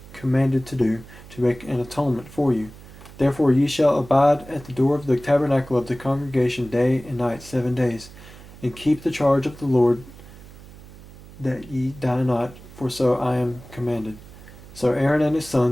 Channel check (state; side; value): noise; right; hum, 19 dB below the sound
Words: commanded to do, to make an atonement for you. Therefore ye shall abide at the door of the tabernacle of the congregation day and night 7 days, and keep the charge of the Lord that ye die not, for so I am commanded. So Aaron and his